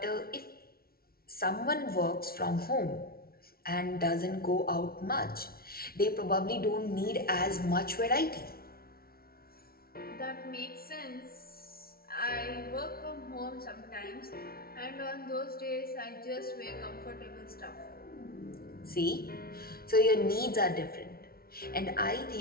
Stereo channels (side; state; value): right; late; 0.44 ms